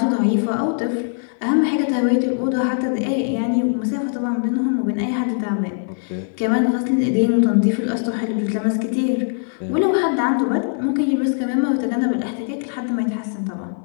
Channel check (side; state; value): right; silent; 65 dB below the other